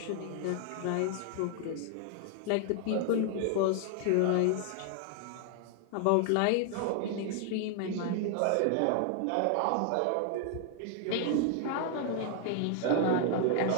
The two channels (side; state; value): both; different; correlation 0.00